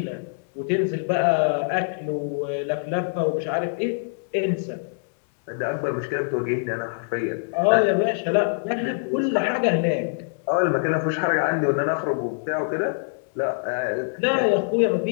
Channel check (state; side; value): silent; right; digital silence